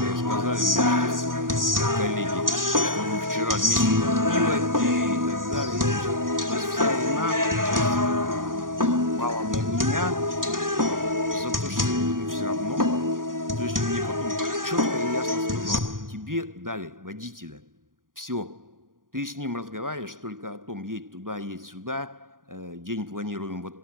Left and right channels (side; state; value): left; late; 0.90 ms